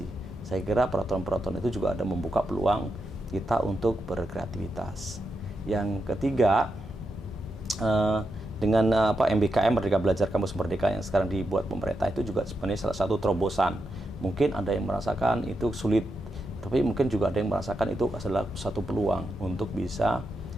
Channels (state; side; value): normal; both; correlation 0.86